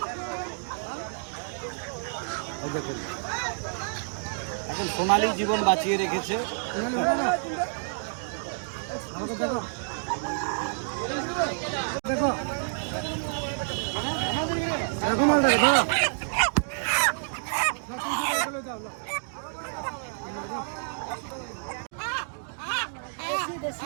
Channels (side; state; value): left; silent; digital silence